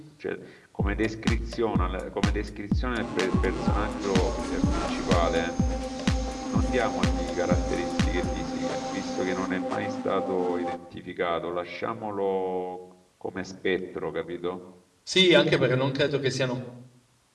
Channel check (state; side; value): identical; both; correlation 1.00